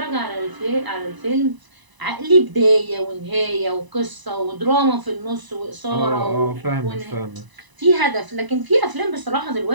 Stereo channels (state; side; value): late; left; 1.0 ms